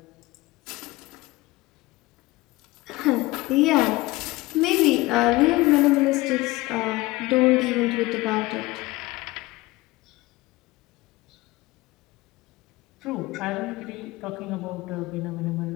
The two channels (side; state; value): right; quieter; 20.3 dB